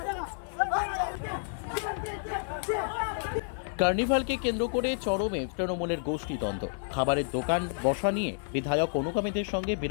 কার্নিভালকে কেন্দ্র করে চরমে তৃণমূলের গোষ্ঠীদ্বন্দ্ব। খাবারের দোকান বসা নিয়ে বিধায়ক অনুগামীদের সঙ্গে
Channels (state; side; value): silent; right; 58 dB below the other